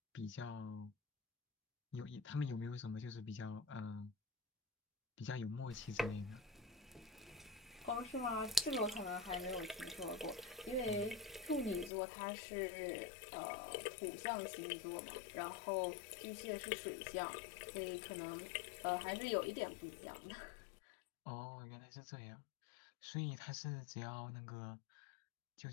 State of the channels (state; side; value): drops out; right; at 11.9 s